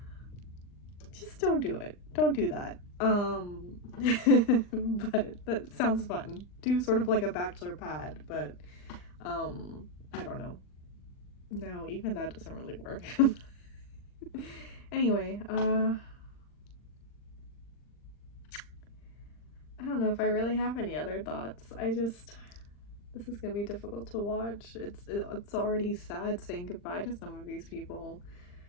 Just don't do it. Don't do that. But that sounds fun. Do sort of like a bachelor pad, but I don't know. No, even that doesn't really work. Anyway, I don't know if I really have any other thoughts. This is gonna be difficult to watch. It's already sad saying goodbye to some of these people.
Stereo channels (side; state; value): right; late; 39 ms